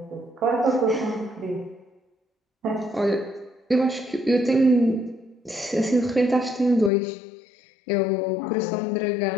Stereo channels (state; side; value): drops out; right; at 6.9 s